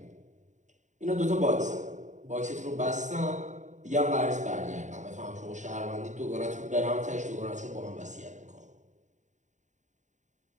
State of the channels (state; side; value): late; left; 0.35 ms